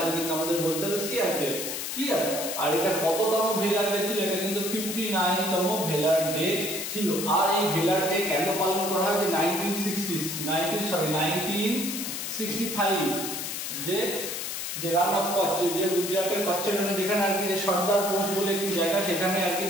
কিন্তু আমাদের বলতে হবে সিআরপিএফ, ক্লিয়ার? আর এটা কততম ভেলার ডে ছিল, এটা কিন্তু 59তম ভেলার ডে ছিল। আর এই ভেলার ডে কেন পালন করা হয় যে 1965 যে রান অফ কচ্ছ, যে গুজরাটের কচ্ছখানে যেখানে আর কি যে সর্দার পোস্ট বলে একটি জায়গা, সেখানে আর কি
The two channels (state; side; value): noise; left; hiss, 4 dB below the sound